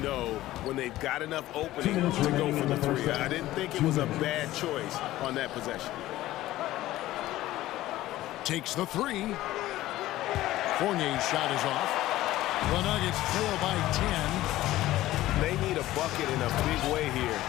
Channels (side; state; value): right; quieter; 15.7 dB